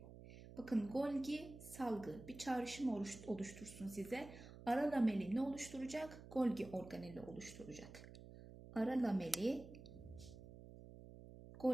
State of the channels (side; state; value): right; noise; hum, 15 dB below the sound